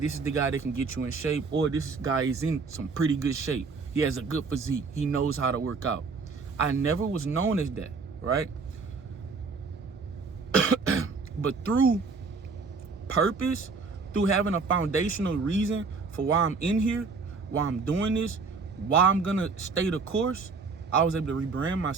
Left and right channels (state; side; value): quieter; left; 4.6 dB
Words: is the guy that can get you in shape, or this guy is in some pretty good shape. He has a good physique. He knows how to work out. I never was known as that, right? But through purpose, through having a foundational reason for why I'm in here, why I'm doing this, why I'm gonna stay the course, I was able to rebrand